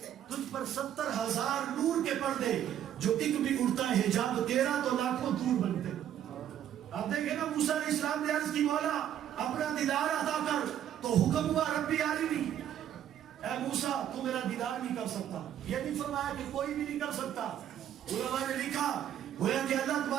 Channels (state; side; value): quieter; left; 10.6 dB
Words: تجھ پر 70,000 نور کے پردے، جو ایک بھی اڑتا ہے حجاب تیرا تو لاکھوں دور بنتے. آپ دیکھیں نا موسیٰ علیہ السلام نے عرض کی مولا اپنا دیدار عطا کر، تو حکم ہوا ربی عالمی، اے موسیٰ تو میرا دیدار نہیں کر سکتا. یہ نہیں فرمایا کہ کوئی بھی نہیں کر سکتا. علماء نے لکھا گویا کہ اللہ